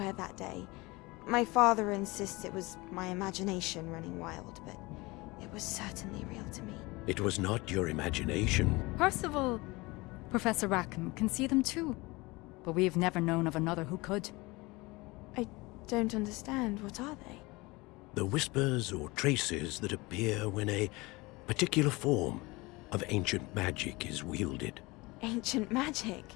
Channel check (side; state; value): right; quieter; 23.2 dB